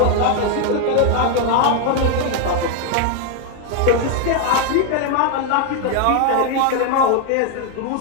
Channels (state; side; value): different; both; correlation 0.01